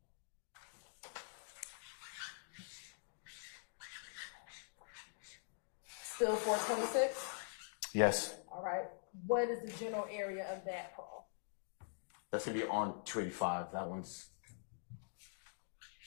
Still 426? Yes, All right. What is the general area of that call? that's gonna be on 285. That one's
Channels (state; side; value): silent; right; digital silence